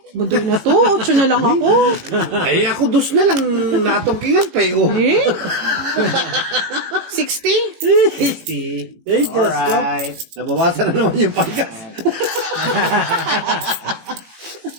Budoy na to. 8 na lang ako. Ay, ako 2 na lang natungkingan, pero. Eh? 60? 60. Ay, Diyos ko. Alright. Nabawasan na naman yung panggas.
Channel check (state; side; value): late; left; 18 ms